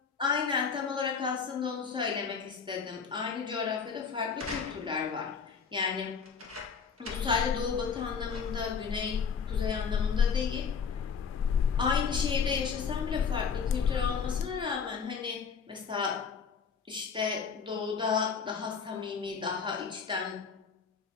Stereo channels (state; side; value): quieter; right; 6.1 dB